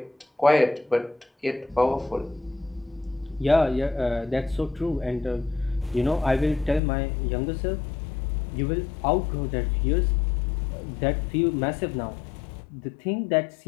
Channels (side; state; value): right; drops out; at 6.8 s